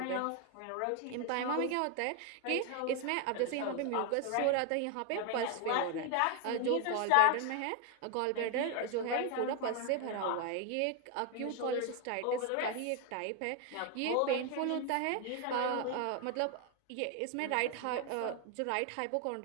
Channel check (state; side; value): different; both; correlation 0.01